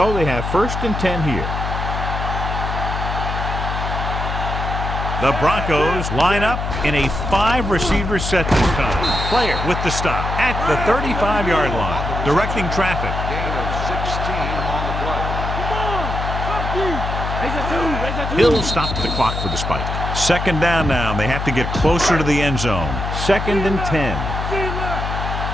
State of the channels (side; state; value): left; noise; hum, 3 dB below the sound